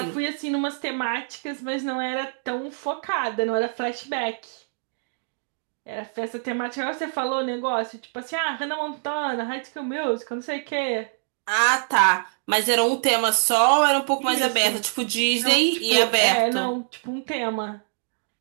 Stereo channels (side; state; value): left; silent; digital silence